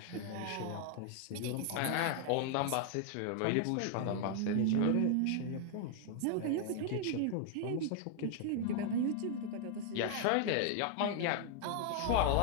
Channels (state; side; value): different; both; correlation 0.00